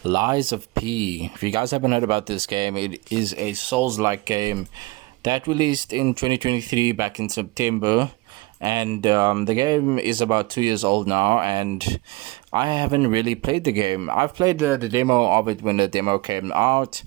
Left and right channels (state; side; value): quieter; left; 22.5 dB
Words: Lies of P. If you guys haven't heard about this game, it is a Souls-like game that released in 2023 back in September. And the game is about 2 years old now, and I haven't really played the game. I've played the demo of it when the demo came out,